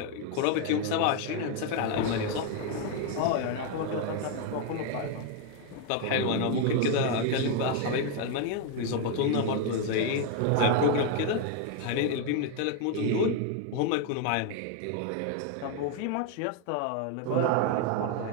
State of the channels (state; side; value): different; both; correlation 0.01